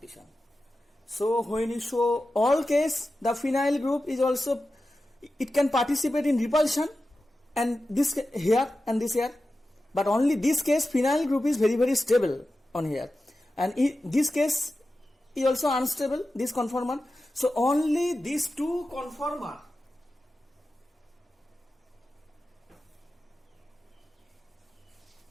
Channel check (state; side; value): normal; both; correlation 0.93